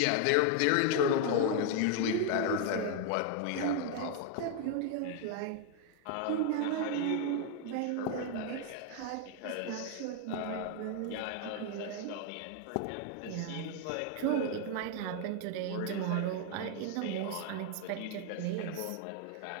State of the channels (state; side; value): different; both; correlation 0.01